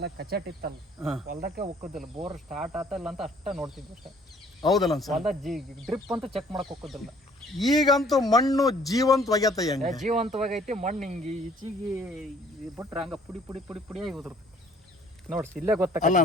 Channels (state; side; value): normal; both; correlation 0.58